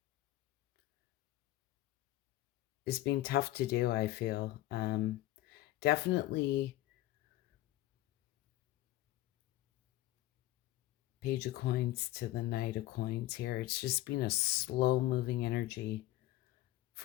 It's been tough to do, I feel. Definitely Page of Coins to the Knight of Coins here. It's just been a slow moving energy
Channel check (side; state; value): right; quieter; 15.7 dB